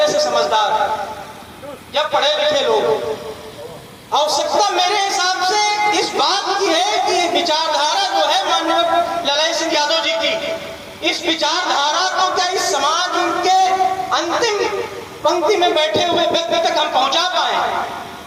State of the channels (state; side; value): identical; both; correlation 1.00